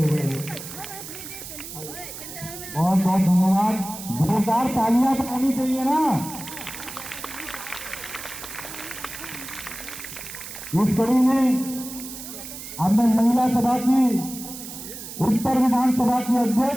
बहुत बहुत धन्यवाद। जोरदार तालियां तो होनी चाहिए ना। इस कड़ी में अब मैं महिला सभा की उत्तर विधानसभा की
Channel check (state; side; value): noise; right; hiss, 11 dB below the sound